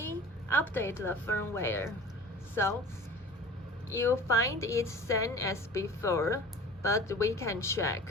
update the firmware. So you find it same as before, but we can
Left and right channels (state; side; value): normal; both; correlation 0.41